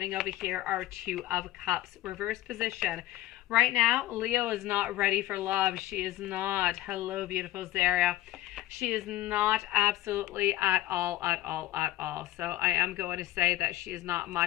over here our Two of Cups, reverse position. Right now, Leo is not ready for love. She is not. Hello, beautiful Zaria. She is not absolutely at all. So I am going to say that she is not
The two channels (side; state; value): right; quieter; 15.2 dB